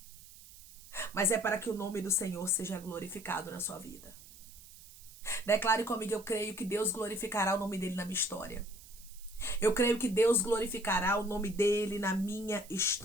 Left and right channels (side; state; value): right; noise; hiss, 19 dB below the sound